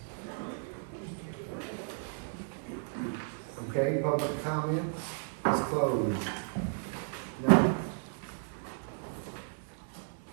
Okay, public comment is closed. No.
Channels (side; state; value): left; silent; digital silence